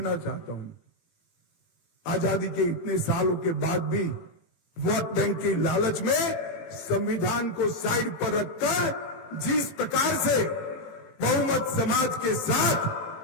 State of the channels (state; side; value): late; right; 18 ms